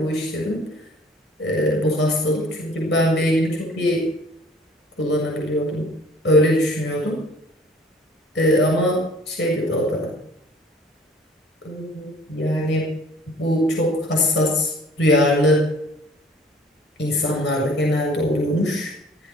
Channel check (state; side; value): normal; both; correlation 0.52